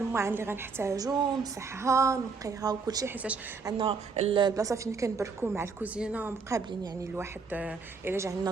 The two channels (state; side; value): quieter; left; 4.8 dB